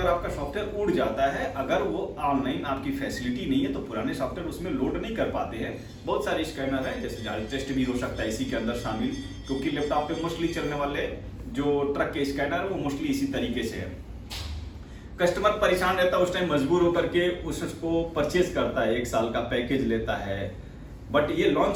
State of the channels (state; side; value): identical; both; correlation 1.00